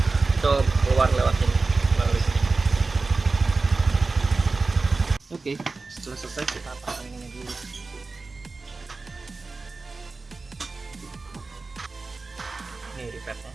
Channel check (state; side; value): quieter; left; 3.8 dB